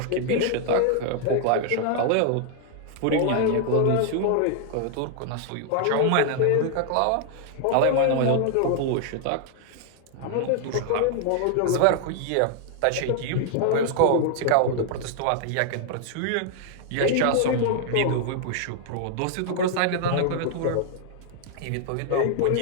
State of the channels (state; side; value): different; both; correlation 0.00